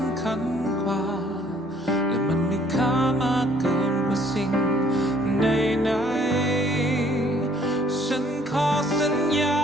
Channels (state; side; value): normal; both; correlation 0.61